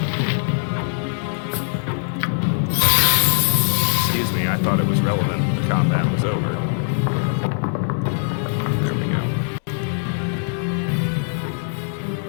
Excuse me, I thought it was relevant. The combat was over. There we go.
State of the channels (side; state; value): right; silent; digital silence